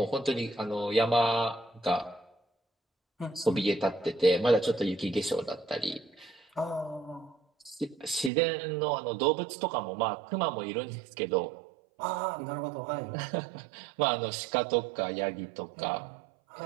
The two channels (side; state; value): left; drops out; at 8.3 s